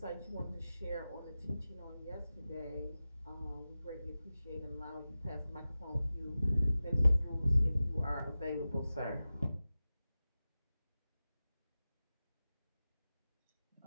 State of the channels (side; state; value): both; inverted; correlation -0.95